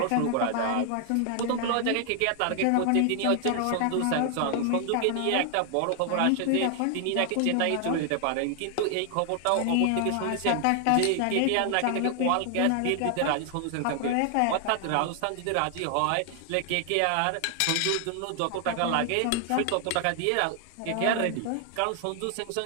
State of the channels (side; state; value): both; different; correlation 0.00